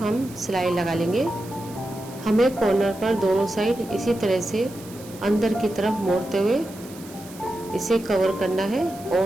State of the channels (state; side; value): noise; right; hiss, 19 dB below the sound